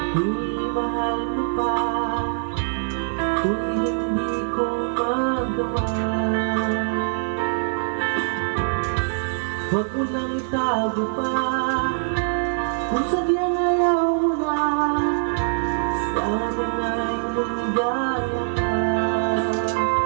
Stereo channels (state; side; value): silent; left; digital silence